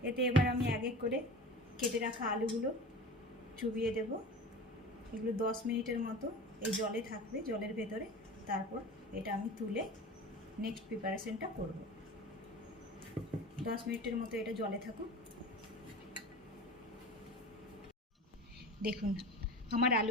এতে এবার আমি এক এক করে কেটে রাখা আলুগুলো চুবিয়ে দেব। এগুলো 10 মিনিটের মতো এই জলে থাকবে, জলের ভেতরে। তারপর এটা আমি তুলে নেক্সট প্রিপারেশনটা করব। 10 মিনিটের মতো এটা জলে থাকুক। দেখুন আমার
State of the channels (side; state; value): both; normal; correlation 0.34